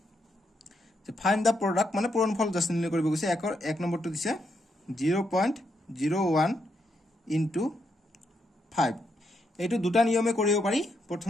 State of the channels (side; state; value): both; normal; correlation 0.79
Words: যে ফাইন্ড দা প্ৰডাক্ট মানে পূৰণফল জাষ্ট নিৰ্ণয় কৰিব গৈছে এক নম্বৰটো দিছে 0.01 into 5 এইটো দুটা নিয়মে কৰিব পাৰি